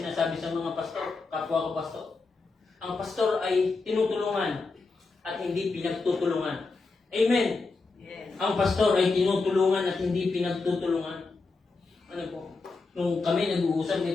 sa mga pastor, kapwa ko pastor. Ang pastor ay tinutulungan at hindi pinagtutulungan. Amen. Yes. Ang pastor ay tinutulungan at hindi pinagtutulungan. Ano po? Nung kami nag-uusap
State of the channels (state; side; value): quieter; right; 3.9 dB